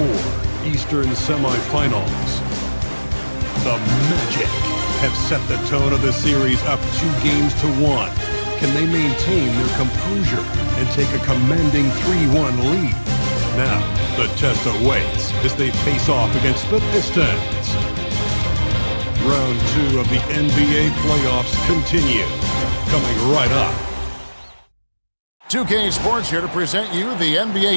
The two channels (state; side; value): inverted; both; correlation -1.00